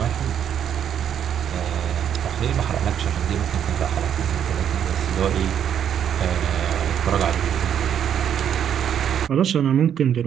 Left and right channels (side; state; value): left; quieter; 9.1 dB